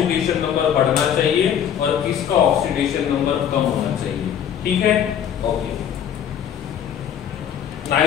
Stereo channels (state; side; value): quieter; right; 9.1 dB